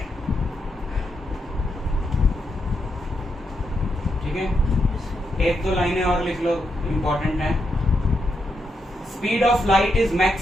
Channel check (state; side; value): normal; both; correlation 0.82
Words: एक दो लाइनें और लिख लो, इंपॉर्टेंट है. Speed of light is